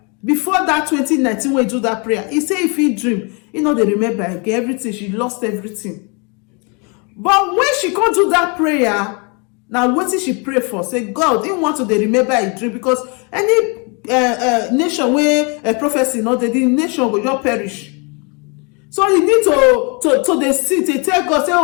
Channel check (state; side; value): quieter; right; 33.1 dB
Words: before that 2019 when he do that prayer, he said if he dream, he know they remember again everything. She lost everything. But when she can't do that prayer, now what did she pray for? Say, God didn't want to dey remember a dream, because any nation where a prophecy not the nation will just perish. So you need to dey sit, they tell God, say,